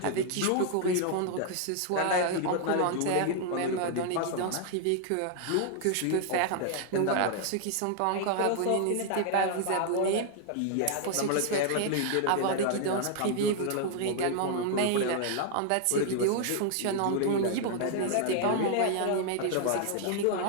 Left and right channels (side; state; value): both; different; correlation 0.00